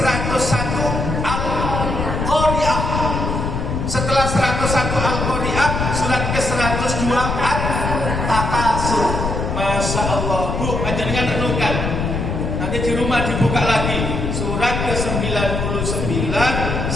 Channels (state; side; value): noise; left; rumble, 2 dB below the sound